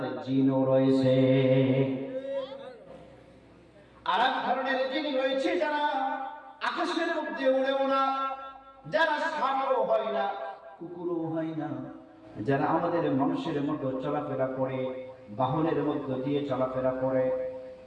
জিনও রয়েছে। আর এক ধরনের জিন রয়েছে যারা আকাশের মধ্যে উড়েও না, যারা সাপও হয় না, কুকুরও হয় না, যারা আমাদের মানুষের মতো চলাফেরা করে, বাহনের মধ্য দিয়ে চলাফেরা করে।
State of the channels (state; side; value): identical; both; correlation 1.00